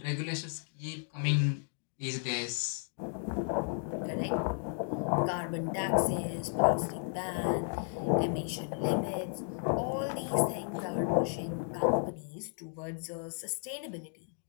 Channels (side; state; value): right; silent; 55 dB below the other